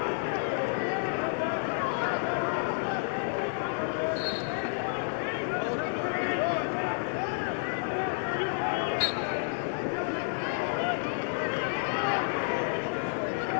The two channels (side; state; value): right; silent; digital silence